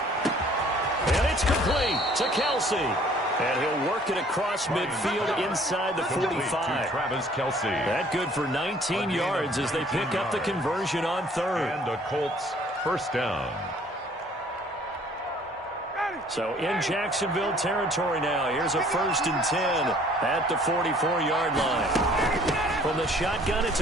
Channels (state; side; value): normal; both; correlation 0.56